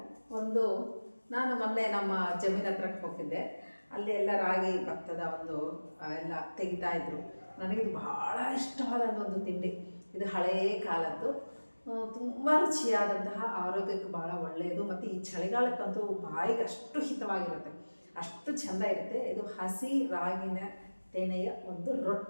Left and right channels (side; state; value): both; inverted; correlation -1.00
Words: ಒಂದು ನಾನು ಮೊನ್ನೆ ನಮ್ಮ ಜಮೀನ್ ಹತ್ರಕ್ಕೆ ಹೋಗಿದ್ದೆ. ಅಲ್ಲಿ ಎಲ್ಲ ರಾಗಿ ಭತ್ತದ ಒಂದು ಎಲ್ಲ ತೆಗಿತಾ ಇದ್ರು. ನನಗಿದು ಬಹಳ ಇಷ್ಟವಾದ ಒಂದು ತಿಂಡಿ. ಇದು ಹಳೆಯ ಕಾಲದ್ದು, ತುಂಬ ರುಚಿಯಾದಂತಹ, ಆರೋಗ್ಯಕ್ಕೆ ಭಾಳ ಒಳ್ಳೆಯದು, ಮತ್ತು ಈ ಚಳಿಗಾಲಕ್ಕಂತೂ ಬಾಯಿಗೆ ಅಷ್ಟು ಹಿತವಾಗಿರುತ್ತೆ, ಅಷ್ಟು ಚೆಂದ ಇರುತ್ತೆ. ಇದು ಹಸಿ ರಾಗಿನ ತೆನೆಯ ಒಂದು